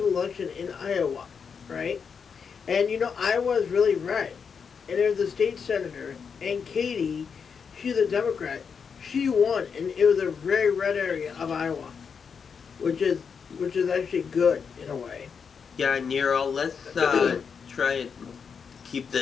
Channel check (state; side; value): quieter; right; 6.2 dB